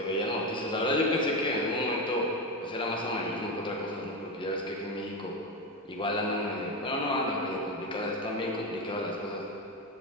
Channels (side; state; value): both; normal; correlation 0.14